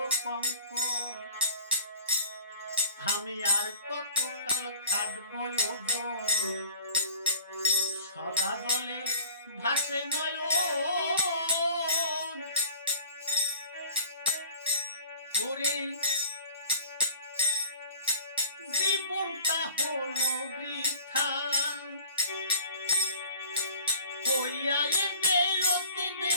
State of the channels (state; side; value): inverted; both; correlation -0.41